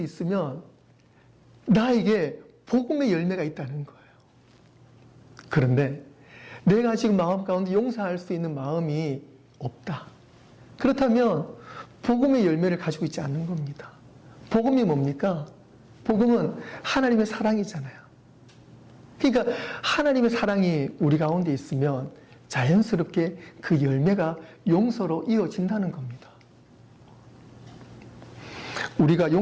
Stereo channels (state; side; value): identical; both; correlation 1.00